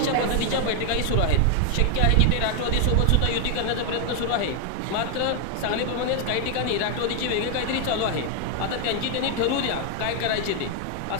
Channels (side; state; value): both; different; correlation 0.00